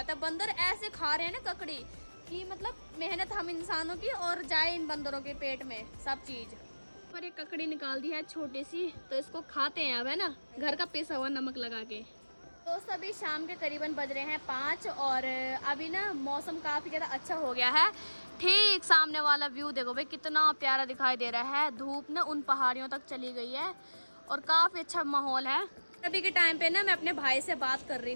है। बंदर ऐसे खा रहे हैं ना ककड़ी कि मतलब मेहनत हम इंसानों की और जाए इन बंदरों के पेट में सब चीज। पर ये ककड़ी निकाल दी है छोटी सी, तो इसको खाते हैं अब, है ना, घर का पिसा हुआ नमक लगा के। दोस्तों अभी शाम के करीबन बज रहे हैं 5, और अभी ना मौसम काफ़ी ज़्यादा अच्छा हो गया है। ठीक सामने वाला व्यू देखो भाई कितना प्यारा दिखाई दे रहा है। धूप ना उन पहाड़ियों तक चली गई है और काफ़ी अच्छा माहौल है। अभी के टाइम पे ना मैं अपने भाई से बात कर रही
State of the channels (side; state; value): both; inverted; correlation -1.00